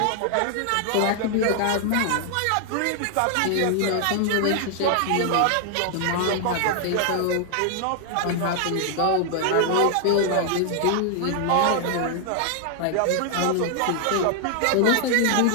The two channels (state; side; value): different; both; correlation 0.00